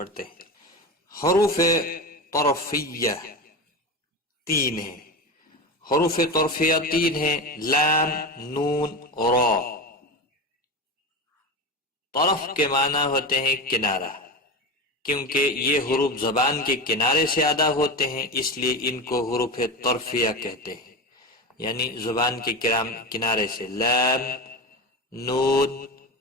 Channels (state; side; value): normal; both; correlation 0.24